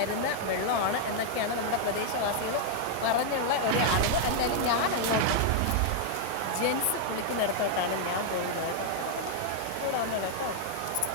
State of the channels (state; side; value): different; both; correlation -0.01